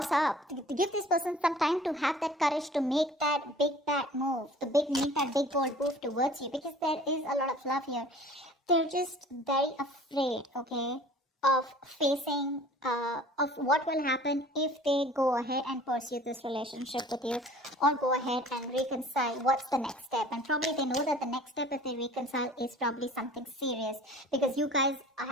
up. To give this person some time to have that courage to make that big bad move. Make that big bold move towards you. Because there is a lot of love here. They're just very afraid, okay, of facing, of what will happen if they go ahead and pursue this relationship with you. Or go ahead and reconcile. What's the next step? And probably they know that the next step if they reconcile is probably something serious. Because you guys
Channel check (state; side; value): normal; both; correlation 0.47